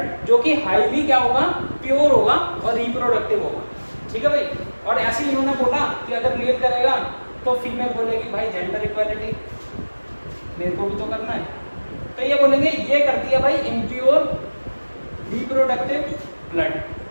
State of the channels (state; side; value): inverted; both; correlation -1.00